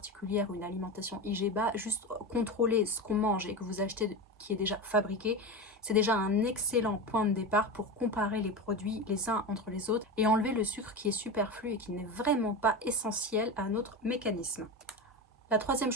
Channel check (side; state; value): both; normal; correlation 0.22